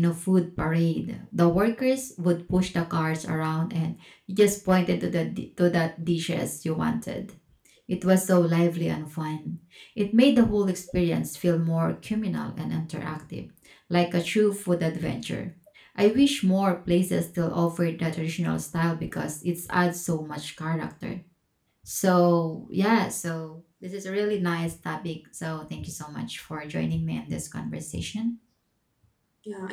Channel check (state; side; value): identical; both; correlation 1.00